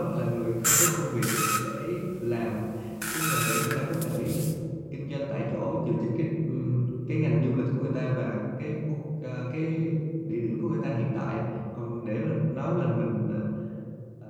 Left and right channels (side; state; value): both; identical; correlation 1.00